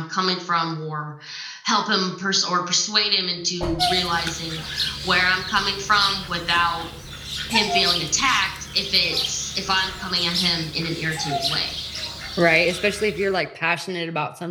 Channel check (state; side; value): identical; both; correlation 1.00